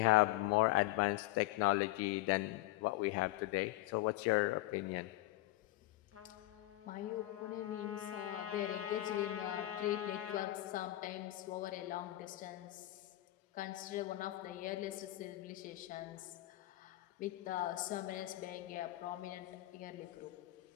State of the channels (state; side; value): quieter; right; 17.1 dB